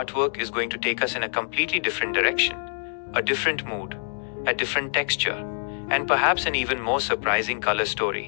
is going to take us in a completely different direction. A different mood, a different texture, and perhaps an even more surprising color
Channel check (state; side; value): silent; right; digital silence